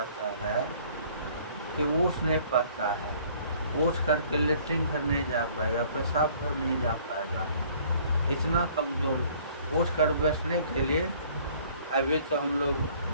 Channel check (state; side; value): inverted; both; correlation -0.56